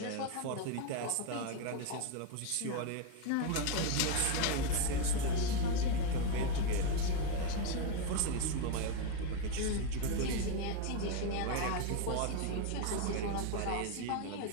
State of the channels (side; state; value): both; different; correlation 0.02